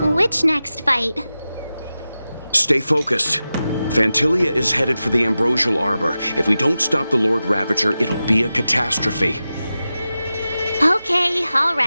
Which next fight? Stay focused. Fantilia is headed for the Ambrosial Arbor. If we don't stop the Lord Ravager, it'll be a catastrophe. Okay, all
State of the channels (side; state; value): both; inverted; correlation -0.93